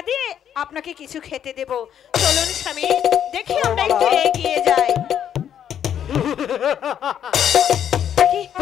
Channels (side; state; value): right; quieter; 9.4 dB